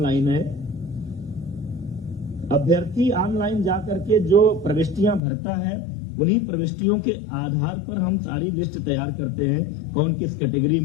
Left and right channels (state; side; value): drops out; right; at 5.2 s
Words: है। अभ्यर्थी ऑनलाइन जाकर के जो प्रविष्टियां भरता है उन्हीं प्रविष्टियों के आधार पर हम सारी लिस्ट तैयार करते हैं, कौन किस कैटेगरी